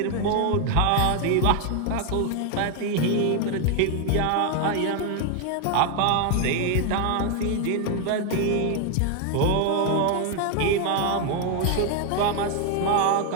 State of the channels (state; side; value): different; both; correlation 0.01